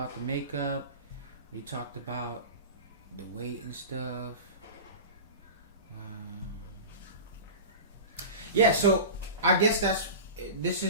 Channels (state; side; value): inverted; both; correlation -0.31